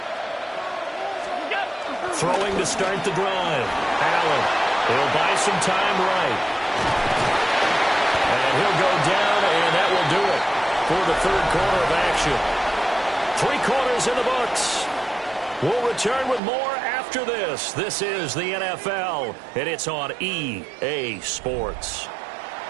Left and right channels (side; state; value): left; drops out; at 16.4 s